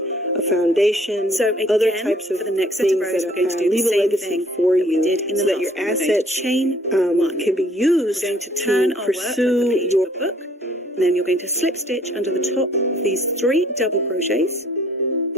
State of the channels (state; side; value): normal; both; correlation 0.59